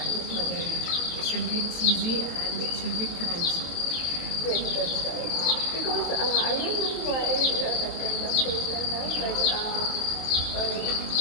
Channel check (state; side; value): late; right; 23 ms